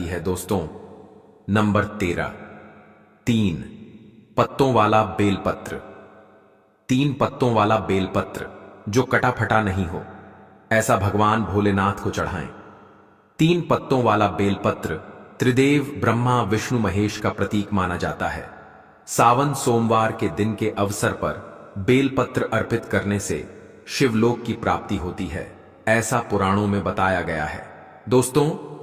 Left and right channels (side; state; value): both; identical; correlation 1.00